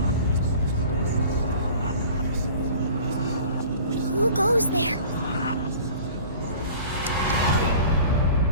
Who goes there?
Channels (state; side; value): inverted; both; correlation -0.45